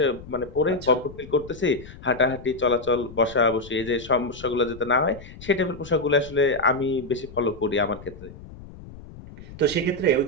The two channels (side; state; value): left; noise; rumble, 16 dB below the sound